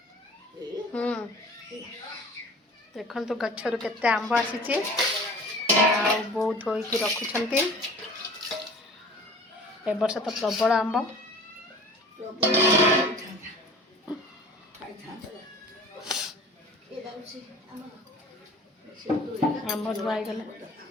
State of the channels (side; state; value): both; normal; correlation 0.43